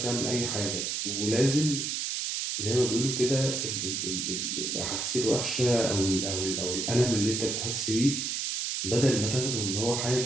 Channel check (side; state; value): right; noise; hiss, 1 dB below the sound